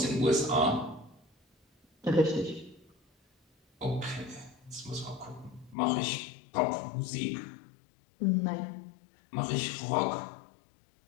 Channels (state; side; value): drops out; right; at 5.8 s